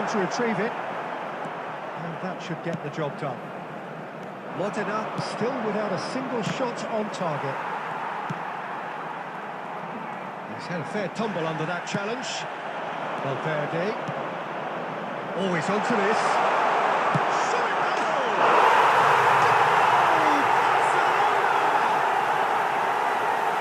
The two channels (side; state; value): both; identical; correlation 1.00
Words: to retrieve it. That should get the job done. Modena still without a single shot on target. He's had a fair tumble under that challenge. Valverde. Always onto this. Shot it goal!